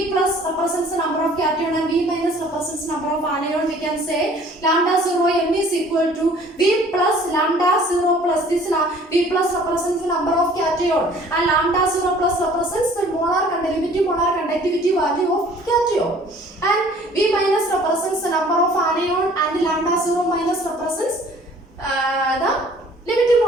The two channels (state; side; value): normal; both; correlation 0.53